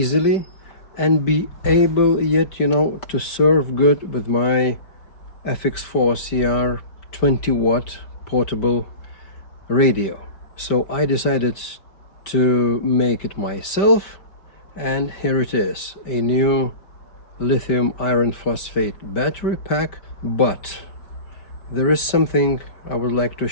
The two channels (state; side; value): late; right; 5.1 ms